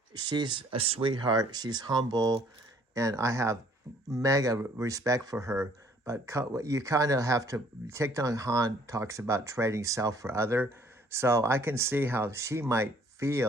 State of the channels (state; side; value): normal; both; correlation 0.60